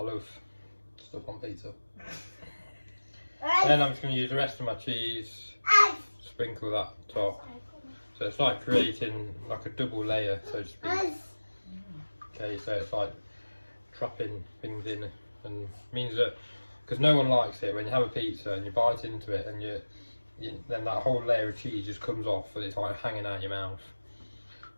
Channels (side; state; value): both; inverted; correlation -1.00